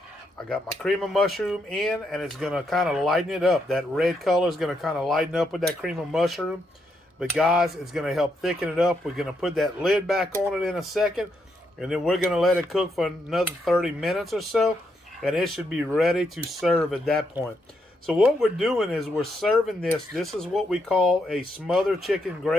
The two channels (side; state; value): both; normal; correlation 0.79